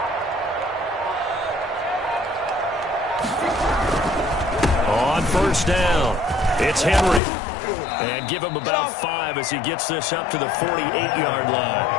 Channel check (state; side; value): drops out; right; at 7.2 s